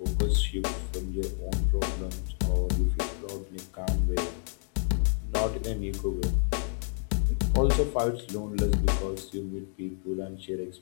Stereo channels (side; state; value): right; silent; digital silence